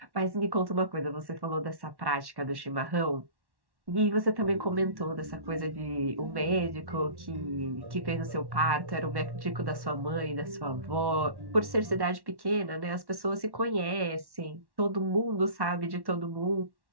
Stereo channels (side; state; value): left; late; 1.1 ms